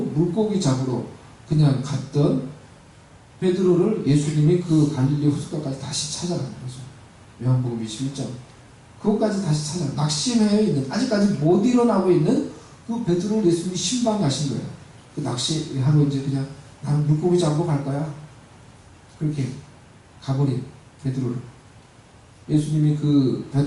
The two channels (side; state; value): both; identical; correlation 1.00